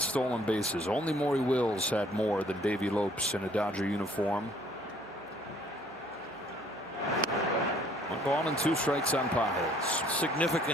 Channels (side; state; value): right; noise; hum, 29 dB below the sound